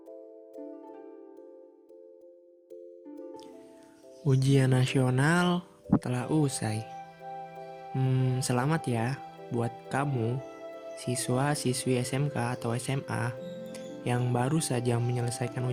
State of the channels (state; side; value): identical; both; correlation 1.00